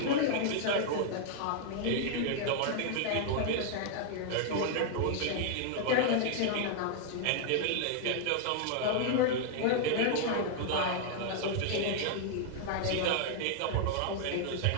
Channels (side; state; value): both; different; correlation 0.00